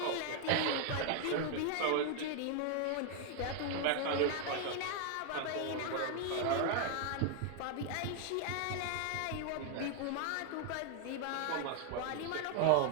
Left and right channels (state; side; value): different; both; correlation 0.00